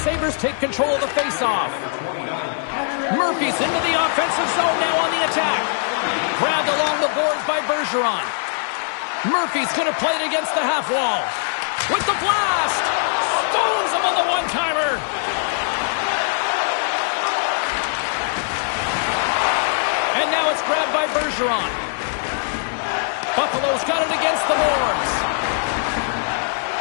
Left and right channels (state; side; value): silent; right; digital silence